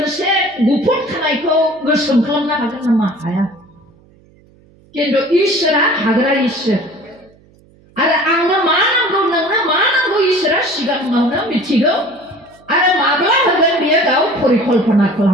गुफुर खानायखौ गोसोम खालामनो हागोन नामा हाया खिन्थु इसोरा हाग्रा इसोर आरो आंनो मा नांगौ नोंनो मा नांगौ इसोरा सिगाङावनो मिथिगौ आरो माब्ला होगोन बियो गाव परिकल्पना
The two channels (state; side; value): noise; right; hum, 30 dB below the sound